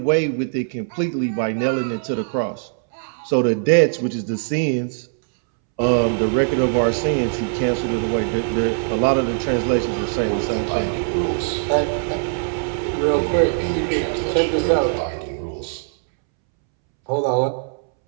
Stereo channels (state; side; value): silent; left; 65 dB below the other